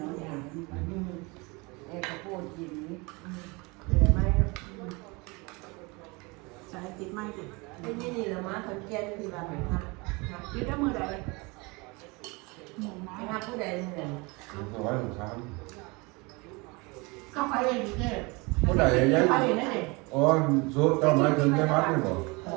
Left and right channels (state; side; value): quieter; left; 26.9 dB